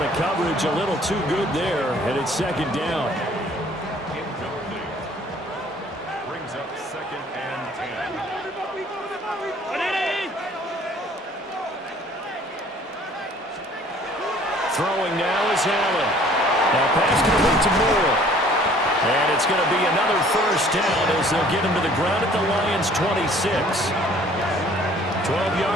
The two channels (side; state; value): both; normal; correlation 0.55